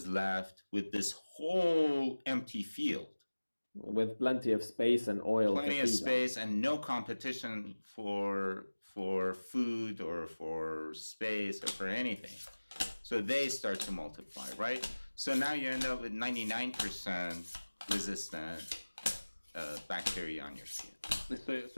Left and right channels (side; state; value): both; inverted; correlation -1.00